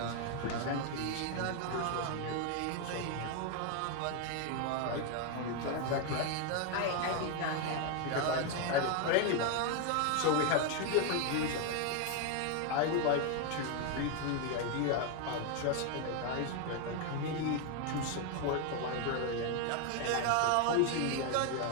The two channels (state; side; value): different; both; correlation 0.01